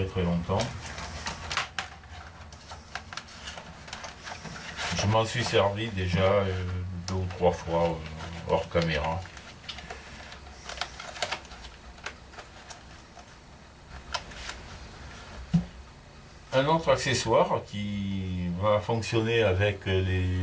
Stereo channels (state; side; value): identical; both; correlation 1.00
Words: très longtemps. Je m'en suis servi déjà 2 ou 3 fois hors caméra. Un autre accessoire qui va fonctionner avec